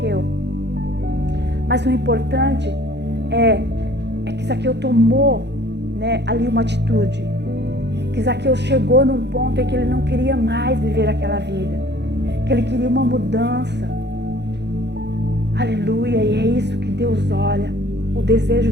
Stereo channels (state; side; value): late; left; 0.50 ms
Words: Mas o importante é que Zaqueu tomou, ali uma atitude. Que Zaqueu chegou num ponto em que ele não queria mais viver aquela vida. Que ele queria uma mudança. Aleluia, e é isso que Deus olha. O desejo